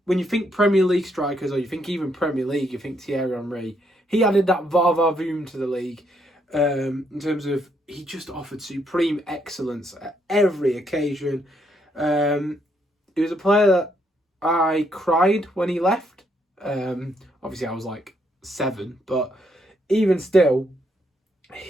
When you think Premier League strikers, or you think even Premier League, you think Thierry Henry. He added that va-va-voom to the league in terms of he just offered supreme excellence at every occasion. He was a player that I cried when he left. Obviously, I was like 7, but even still,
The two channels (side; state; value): both; normal; correlation 0.74